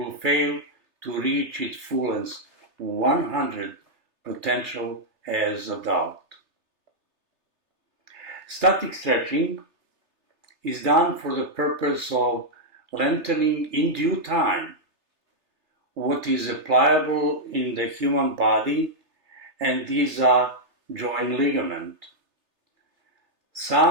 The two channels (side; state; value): left; late; 3.3 ms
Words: fail to reach its fullest 100 potential as adult. Static stretching is done for the purpose of lengthening in due time what is pliable in the human body, and these are joint ligament.